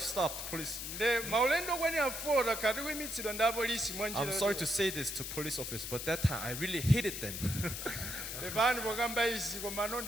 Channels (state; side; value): noise; left; hiss, 6 dB below the sound